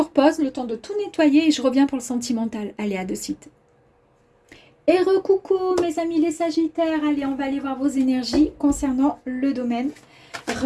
pause le temps de tout nettoyer et je reviens pour le sentimental. Allez, à de suite. Et recoucou, mes amis les Sagittaires. Allez, on va aller voir vos énergies concernant le domaine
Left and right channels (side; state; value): both; identical; correlation 1.00